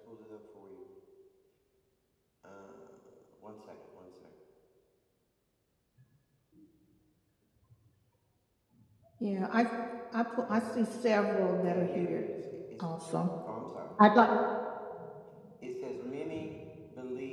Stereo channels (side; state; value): both; identical; correlation 1.00